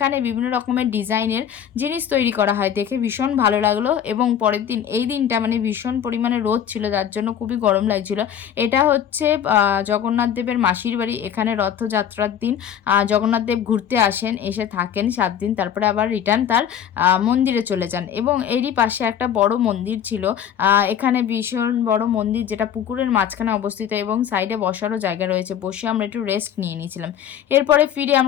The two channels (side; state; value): right; quieter; 9.2 dB